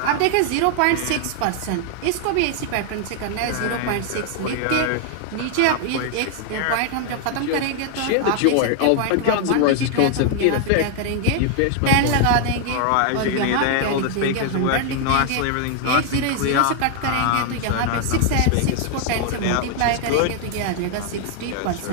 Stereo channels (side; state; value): both; different; correlation 0.00